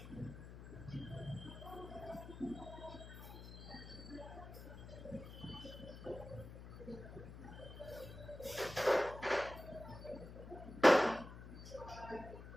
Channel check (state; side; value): noise; left; hum, 12 dB below the sound